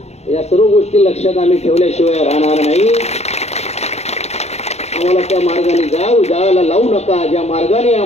या सर्व गोष्टी लक्षात आम्ही ठेवल्याशिवाय राहणार नाही. आम्हाला त्या मार्गाने जायला लावू नका. ज्या मार्गाने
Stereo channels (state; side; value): late; right; 0.31 ms